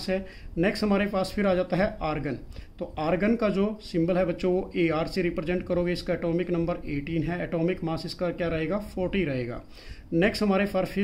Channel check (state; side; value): identical; both; correlation 1.00